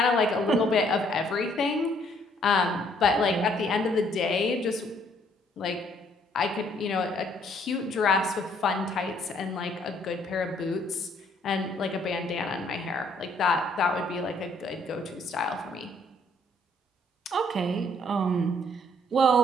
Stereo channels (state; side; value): normal; both; correlation 0.65